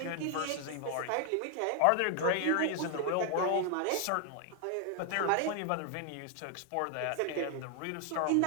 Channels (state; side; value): different; both; correlation 0.00